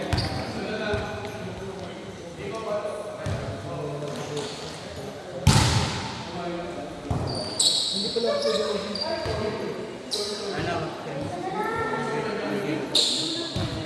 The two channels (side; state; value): both; identical; correlation 1.00